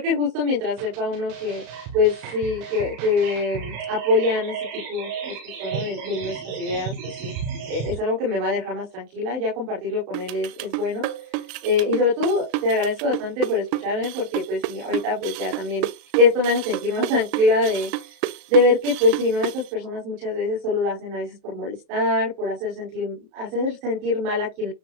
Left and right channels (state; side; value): late; left; 34 ms